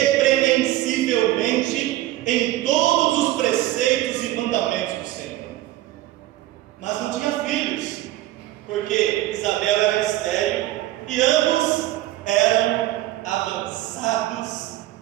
em todos os preceitos e mandamentos do Senhor. Mas não tinha filhos, porque Isabel era estéril e ambos eram avançados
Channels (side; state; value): left; quieter; 15.4 dB